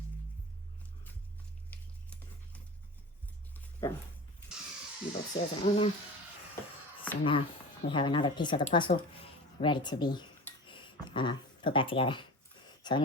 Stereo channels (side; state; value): both; normal; correlation 0.33